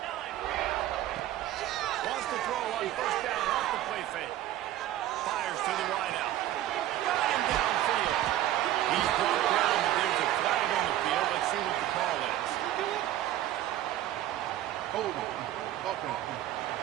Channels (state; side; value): quieter; left; 13.4 dB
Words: Wants to throw on 1st down off the play fake. Fires to the wide out. Got him downfield. He's brought down, but there's a flag on the field. Let's see what the call is. Hold it. Okay.